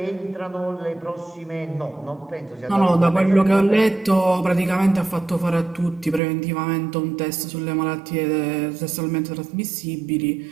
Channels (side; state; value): left; drops out; at 6.2 s